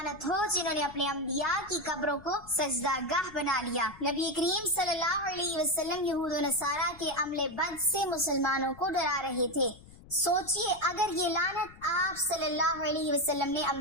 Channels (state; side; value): noise; left; rumble, 21 dB below the sound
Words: ہو جنہوں نے اپنے انبیاء کی قبروں کو سجدہ گاہ بنا لیا۔ نبی کریم صلی اللہ علیہ وسلم یہود و نصارہ کے عمل بد سے مسلمانوں کو ڈرا رہے تھے۔ سوچئے اگر یہ لعنت آپ صلی اللہ علیہ وسلم نے